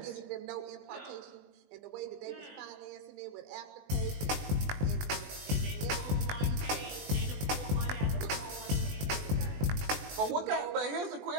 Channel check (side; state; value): left; late; 20 ms